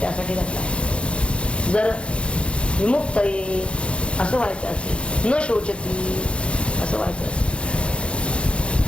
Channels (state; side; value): late; right; 0.058 ms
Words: त्यासाठी घातलाय. जर विमुक्त ये असं व्हायचं असेल, न शोचती असं व्हायचं असेल,